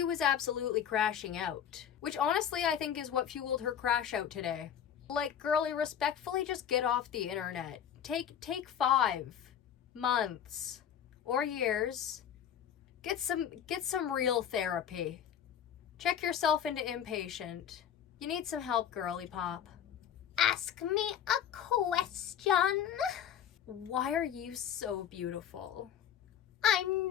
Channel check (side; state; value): right; quieter; 9.1 dB